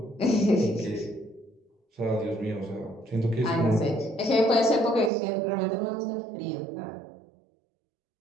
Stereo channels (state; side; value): drops out; left; at 5.1 s